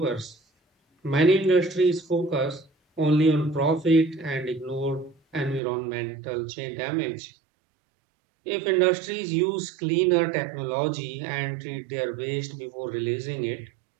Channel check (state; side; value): drops out; left; at 5.6 s